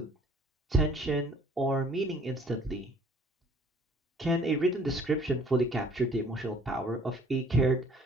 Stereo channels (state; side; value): normal; both; correlation 0.56